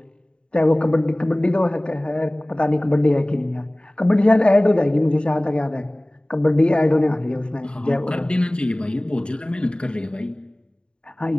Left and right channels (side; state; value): right; late; 0.052 ms